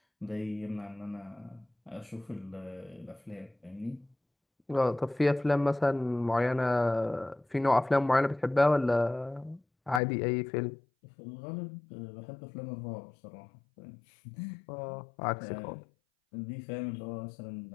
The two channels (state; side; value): drops out; right; at 10.0 s